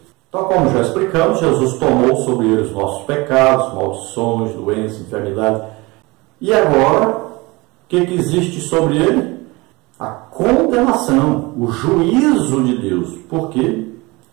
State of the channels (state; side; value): quieter; left; 23.8 dB